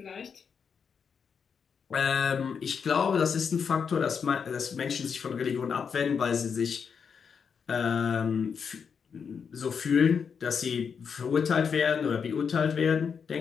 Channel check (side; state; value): right; quieter; 6.5 dB